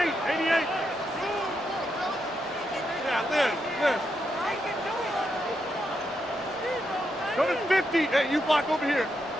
Yeah, Liz. Go to 50. Hey, you block over here.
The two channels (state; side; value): normal; both; correlation 0.82